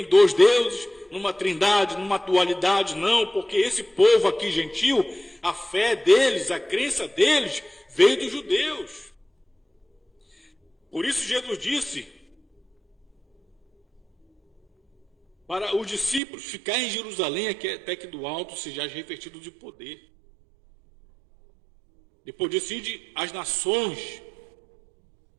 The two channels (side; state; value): left; drops out; at 16.2 s